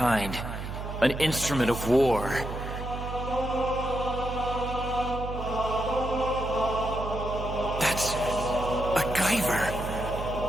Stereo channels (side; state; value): right; noise; hum, 6 dB below the sound